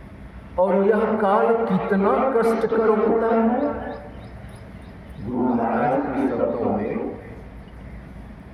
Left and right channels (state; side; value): identical; both; correlation 1.00